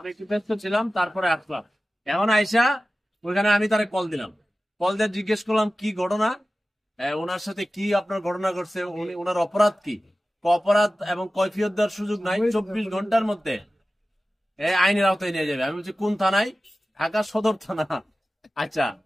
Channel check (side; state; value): both; normal; correlation 0.95